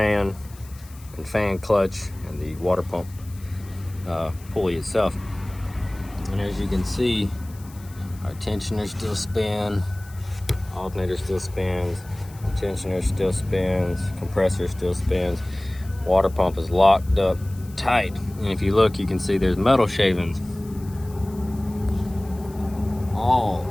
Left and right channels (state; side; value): noise; left; hiss, 23 dB below the sound